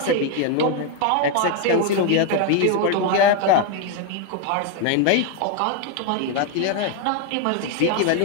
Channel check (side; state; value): both; different; correlation 0.01